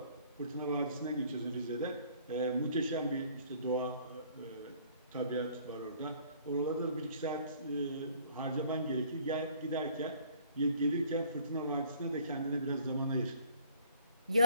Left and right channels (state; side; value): inverted; both; correlation -0.56